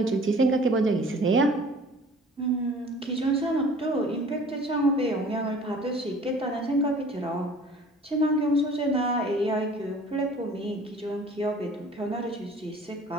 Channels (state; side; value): normal; both; correlation 0.48